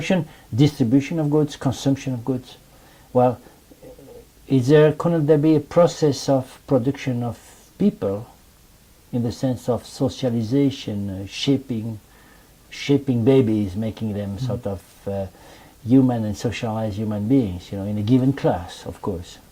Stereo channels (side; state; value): both; identical; correlation 1.00